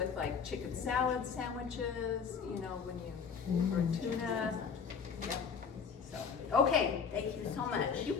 like chicken salad sandwiches, when you, or tuna. Yep, so. Okay, Thank you so much. You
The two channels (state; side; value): quieter; right; 6.2 dB